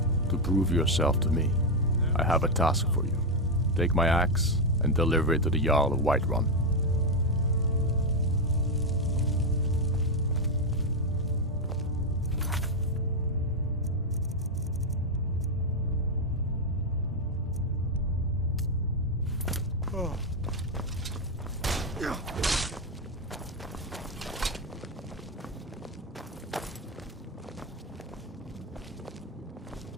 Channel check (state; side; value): normal; both; correlation 0.04